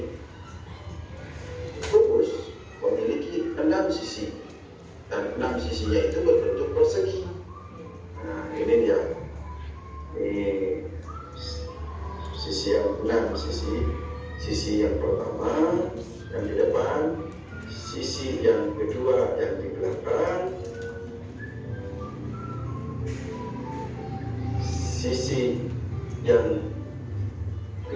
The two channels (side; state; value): both; identical; correlation 1.00